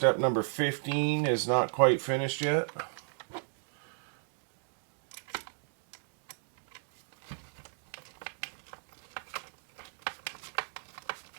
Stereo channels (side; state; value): left; silent; digital silence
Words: number 15 is not quite finished yet.